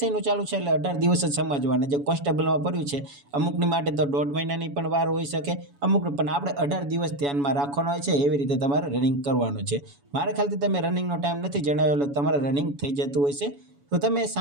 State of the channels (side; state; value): left; late; 7.1 ms